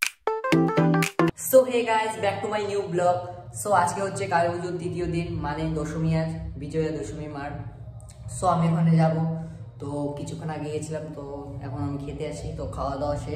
So hey guys, back to my new blog. So আজকে হচ্ছে কালী পুজোর তৃতীয় দিন মানে দশমী। আজ বিজয়া দশমী মার। সো আমি ওখানে যাব, তো কিছুক্ষণ আগে গেছিলাম, তো এখন আমি খেতে আসি। তো খাওয়া দাওয়া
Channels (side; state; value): both; identical; correlation 1.00